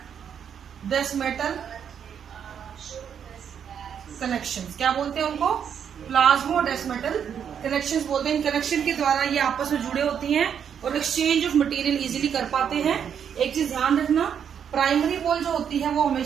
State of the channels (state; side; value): quieter; left; 8.1 dB